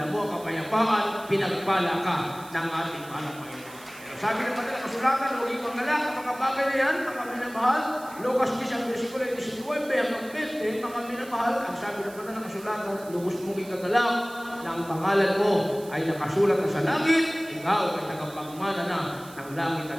kapayapaan, pinagpala ka ng ating mahal na Panginoon. Sabi ng mga kasulatan, huwag yung mangalak ang mga bagay na yan, mga minamahal. Lucas 10 ang versikulo 19 hanggang 20, mga minamahal, ang sabi ng mga kasulatan, lubos mong ikagalak na ang pangalan mo ay nakasulat na sa langit, ikaw ay tagapagmana na ng langit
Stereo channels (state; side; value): noise; right; hiss, 20 dB below the sound